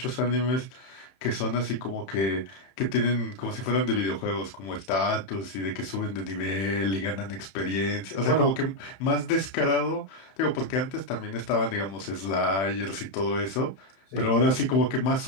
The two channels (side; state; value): right; late; 31 ms